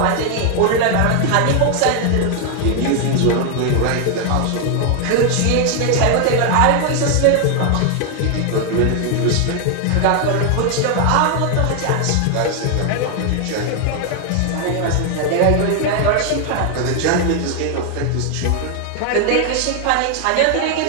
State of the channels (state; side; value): different; both; correlation 0.00